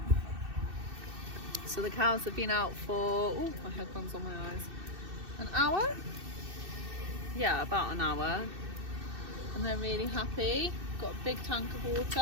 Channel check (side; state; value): left; late; 2.6 ms